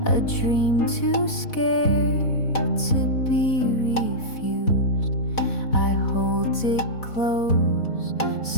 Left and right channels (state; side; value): late; right; 4.1 ms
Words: a dream too scared to be refused. I hold it close,